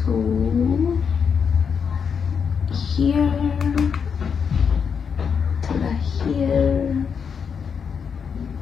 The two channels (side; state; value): right; quieter; 6.6 dB